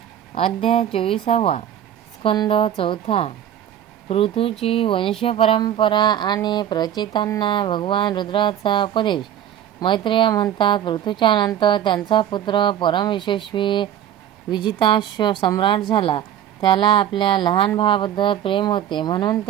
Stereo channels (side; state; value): left; quieter; 10.6 dB